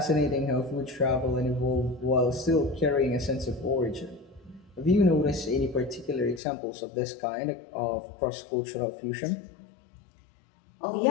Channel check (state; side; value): drops out; right; at 6.4 s